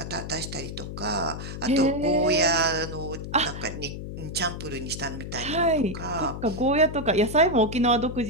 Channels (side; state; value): left; noise; hum, 8 dB below the sound